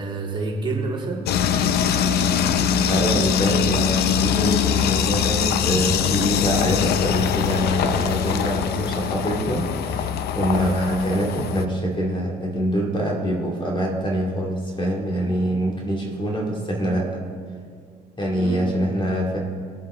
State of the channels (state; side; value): quieter; right; 3.1 dB